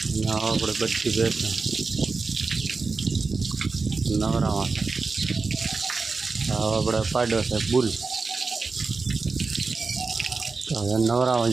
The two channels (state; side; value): quieter; left; 4.3 dB